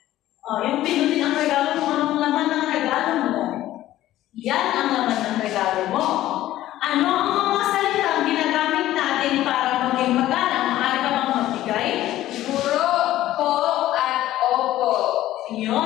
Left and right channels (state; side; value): quieter; right; 14.3 dB